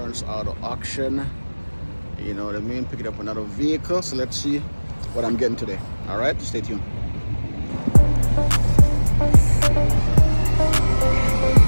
auto auction. You know what I mean? Picking up another vehicle. So let's see what I'm getting today. All right, stay tuned.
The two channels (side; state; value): both; inverted; correlation -1.00